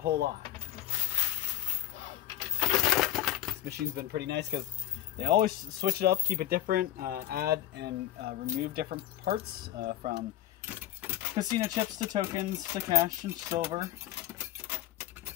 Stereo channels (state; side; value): quieter; right; 12.8 dB